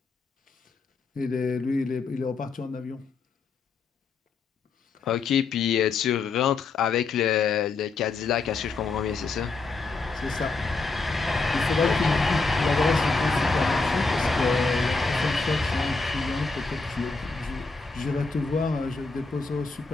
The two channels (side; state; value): right; quieter; 4.2 dB